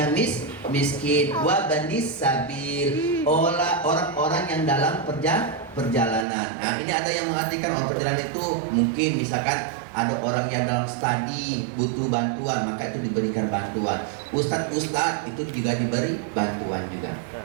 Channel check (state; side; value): drops out; left; at 6.2 s